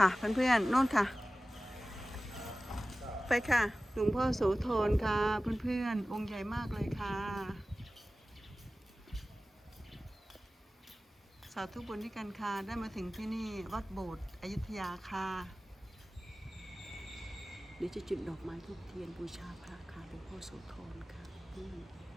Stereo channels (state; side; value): normal; both; correlation 0.97